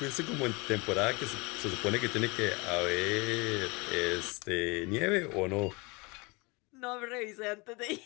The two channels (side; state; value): right; quieter; 26.9 dB